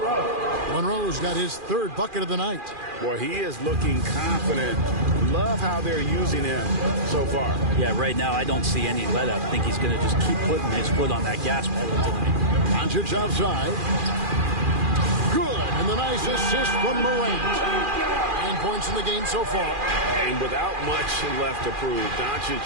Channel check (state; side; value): late; left; 2.4 ms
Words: Monroe's got his 3rd bucket of the night. Boy, he is looking confident. Love how they're using him so far. Yeah, right now I don't see any let up. I think he's going to just keep putting his foot on that gas pedal tonight. Doncic outside. Good, and the nice assist from Morant. 9 points in the game so far. And without much left to prove, Doncic